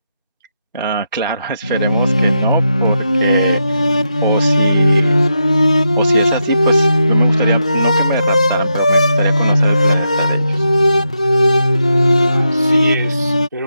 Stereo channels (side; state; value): both; inverted; correlation -0.85